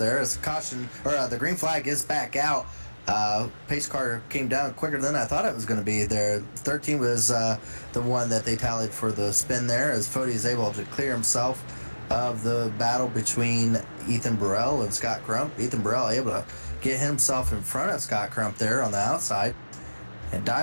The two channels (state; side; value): inverted; both; correlation -1.00